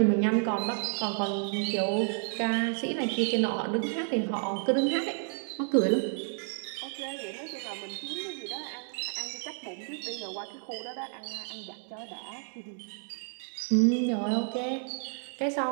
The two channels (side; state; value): left; silent; 57 dB below the other